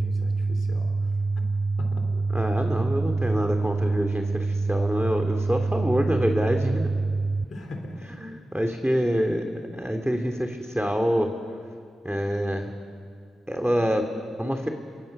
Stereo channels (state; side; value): normal; both; correlation 0.95